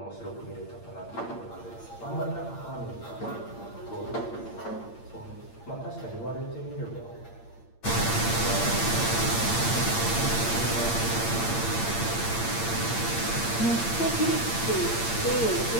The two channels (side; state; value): right; late; 8.7 ms